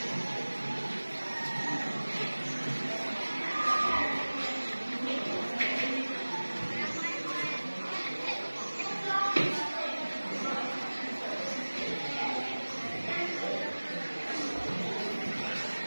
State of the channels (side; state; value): both; inverted; correlation -1.00